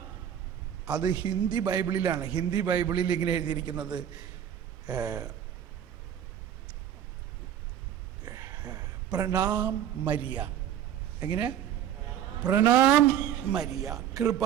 അത് ഹിന്ദി ബൈബിളിലാണ്. ഹിന്ദി ബൈബിളിൽ ഇങ്ങനെ എഴുതിയിരിക്കുന്നത് പ്രണാം മരിയ. എങ്ങനെ? പ്രണാം മരിയ,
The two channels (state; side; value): quieter; left; 10.0 dB